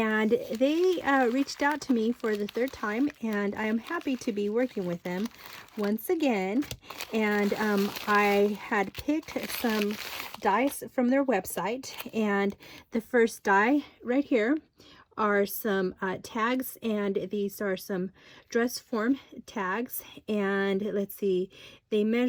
they reached out to me for the third time, and I am happy to be working with them once again. And I had picked some dies from their website, and the first die right here are some tags, and these are some dress form tags, and let's see, they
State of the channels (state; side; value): identical; both; correlation 1.00